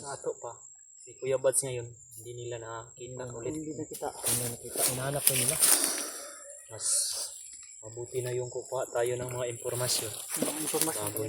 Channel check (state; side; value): identical; both; correlation 1.00